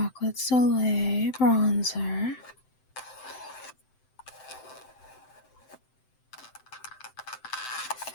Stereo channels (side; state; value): right; late; 7.7 ms